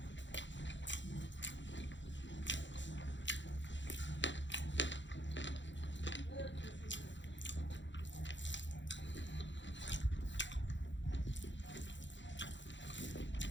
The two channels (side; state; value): right; late; 0.54 ms